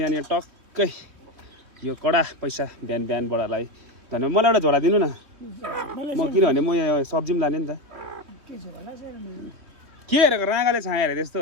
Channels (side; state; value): left; late; 2.9 ms